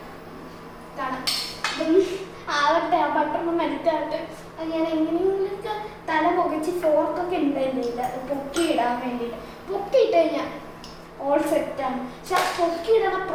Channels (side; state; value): both; identical; correlation 1.00